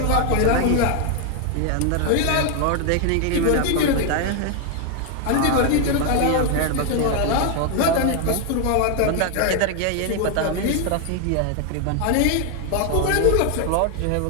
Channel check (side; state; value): both; different; correlation 0.01